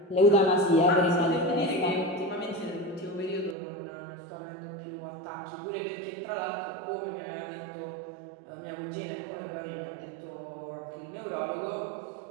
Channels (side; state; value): left; drops out; at 3.6 s